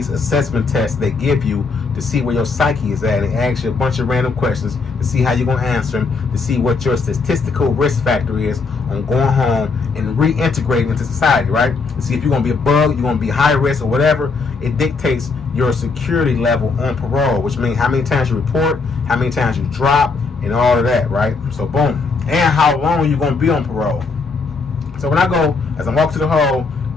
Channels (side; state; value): right; quieter; 4.4 dB